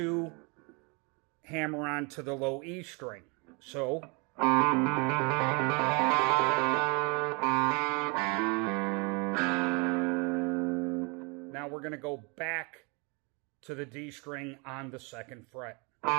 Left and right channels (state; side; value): quieter; left; 31.1 dB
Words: hammer on to the low E string. So... Now we're going to go back to the D string on the 2nd fret